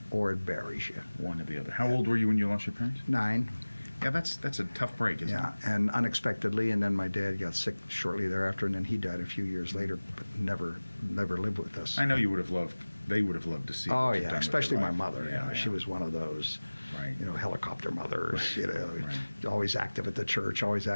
or it buries you. One or the other. How old were you when you lost your parents? 9. Yeah, that's a tough break, isn't it? Yeah, and unexpectedly, and then my dad got sick shortly thereafter, and then he died a few years later, but never lived with us. I know they would have loved to see. Oh what you've yeah, done with especially your my life. mother. Yeah, She was one of those, Right. helicopter mothers. Right. Always active at the church, always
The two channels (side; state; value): both; inverted; correlation -1.00